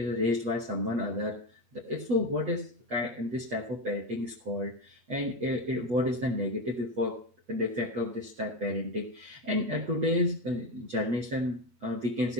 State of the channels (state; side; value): late; left; 8.5 ms